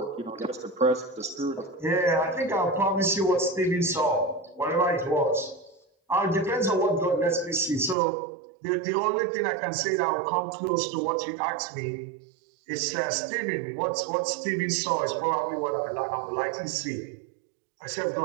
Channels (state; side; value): drops out; left; at 8.0 s